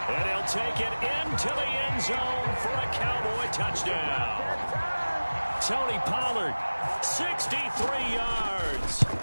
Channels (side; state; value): both; inverted; correlation -1.00